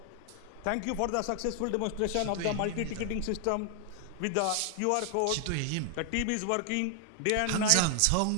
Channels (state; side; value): different; both; correlation 0.00